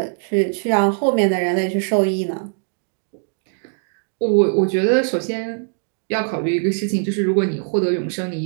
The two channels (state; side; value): silent; left; digital silence